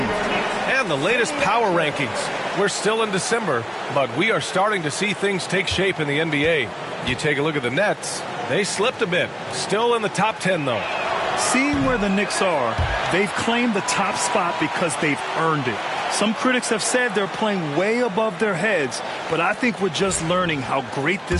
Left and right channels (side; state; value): both; identical; correlation 1.00